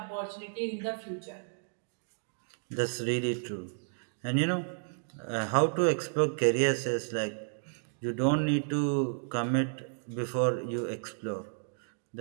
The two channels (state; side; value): silent; left; digital silence